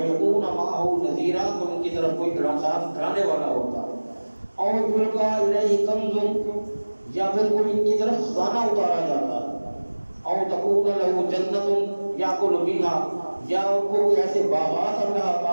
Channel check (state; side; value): inverted; both; correlation -1.00